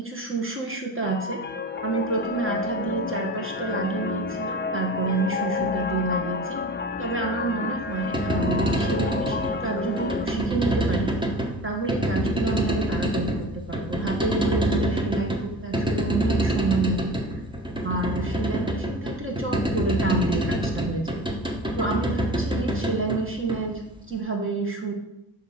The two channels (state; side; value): normal; both; correlation 0.36